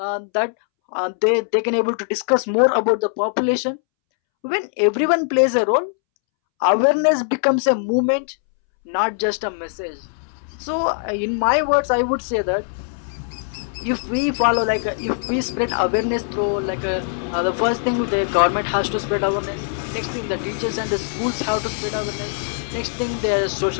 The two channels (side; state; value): right; silent; 65 dB below the other